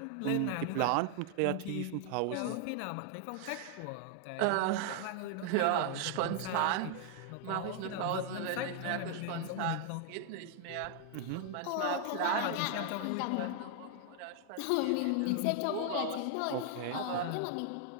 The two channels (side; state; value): both; different; correlation 0.00